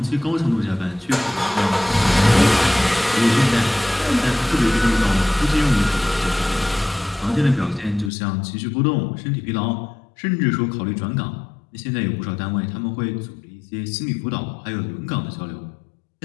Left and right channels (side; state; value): right; drops out; at 8.1 s